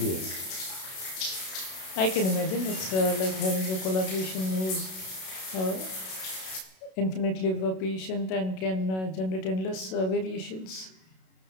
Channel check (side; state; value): right; late; 32 ms